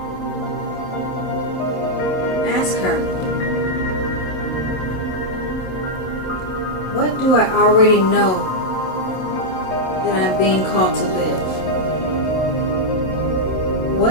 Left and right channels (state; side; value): late; right; 27 ms